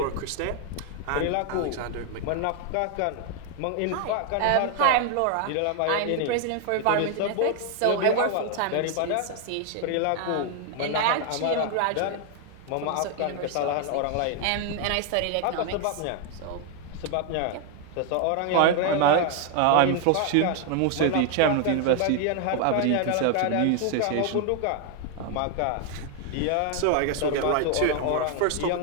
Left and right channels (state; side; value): different; both; correlation 0.00